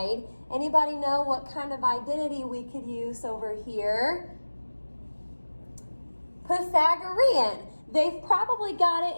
Anybody know what kind of identity we could use over here? Pythagorean. They've probably got it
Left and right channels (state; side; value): inverted; both; correlation -1.00